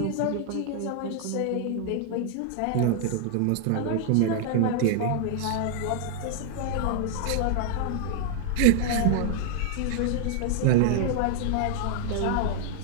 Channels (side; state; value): both; different; correlation 0.00